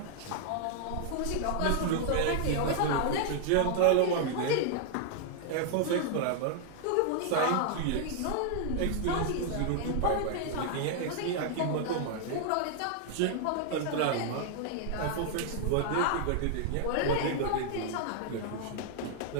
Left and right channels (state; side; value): different; both; correlation 0.00